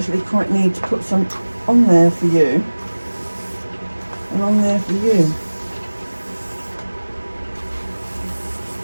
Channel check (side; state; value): both; inverted; correlation -1.00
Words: quite need to put some on there for you, and on there for you.